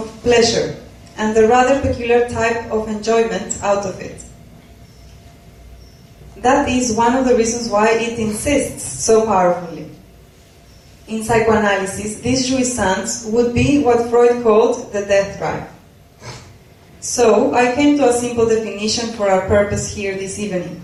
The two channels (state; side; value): identical; both; correlation 1.00